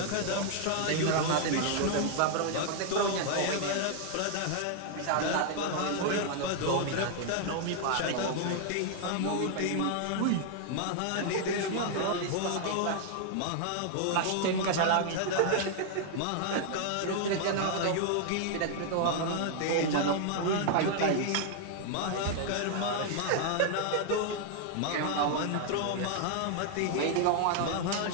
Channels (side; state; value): both; different; correlation 0.00